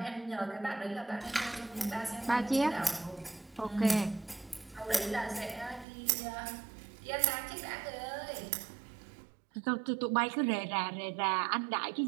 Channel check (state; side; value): drops out; left; at 5.9 s